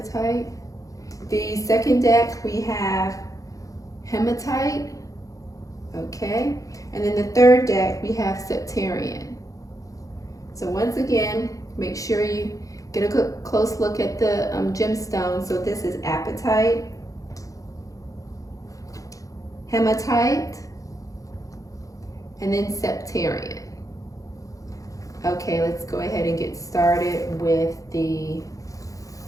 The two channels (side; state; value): right; late; 0.16 ms